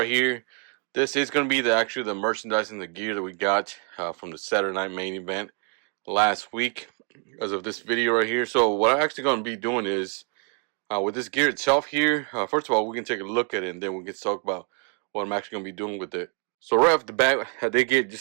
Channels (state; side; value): quieter; left; 37.4 dB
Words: here, this is going to be the merchandise and the gear that we got from the Saturday Night Main Event last week, as of this video right here. So what I'm actually going to be doing is, with this gear itself here, first of all, we can take a look at it, and then we can talk about what I'm actually going to be doing with it. So right off the bat, they get